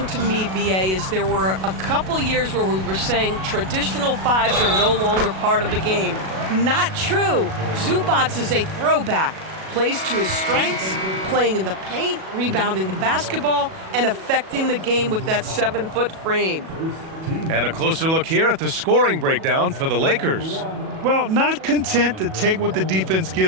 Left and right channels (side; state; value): left; late; 37 ms